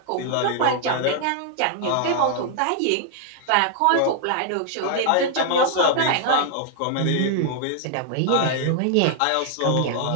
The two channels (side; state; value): both; different; correlation 0.00